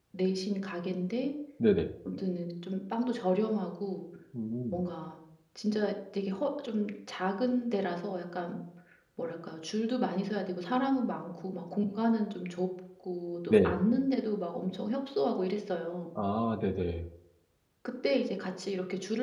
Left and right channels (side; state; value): both; identical; correlation 1.00